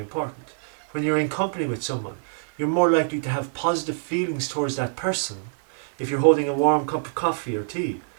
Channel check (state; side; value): silent; left; 55 dB below the other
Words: When you're in company with someone, you're more likely to have positive feelings towards that person if you're holding a warm cup of coffee or tea,